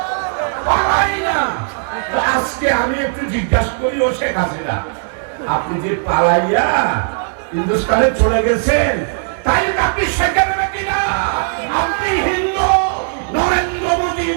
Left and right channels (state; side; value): silent; left; digital silence